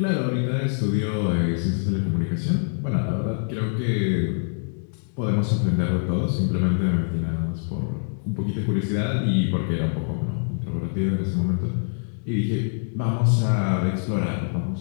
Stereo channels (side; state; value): right; silent; digital silence